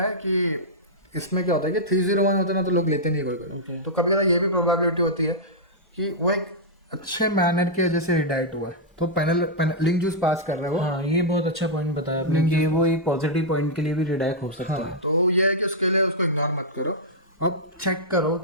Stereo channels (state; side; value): normal; both; correlation -0.08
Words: कि इसमें क्या होता है कि 301 होते हैं ना तो लोग लेते नहीं कोई। तो कभी ज़्यादा ये भी प्रोबेबिलिटी होती है कि वो एक अच्छे मैनर की वजह से रिडायरेक्ट हुआ है, तो पैनल लिंक जूस पास कर रहे हो। हाँ, ये बहुत अच्छा पॉइंट बताया आपने कि वो एक पॉजिटिव पॉइंट के लिए भी रिडायरेक्ट हो सकता है। तो ये है कि उसके लिए उसको इग्नोर मत करो और चेक करो